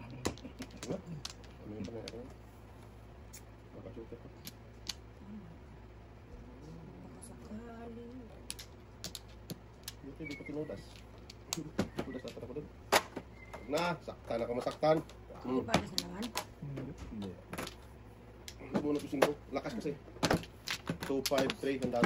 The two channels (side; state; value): both; identical; correlation 1.00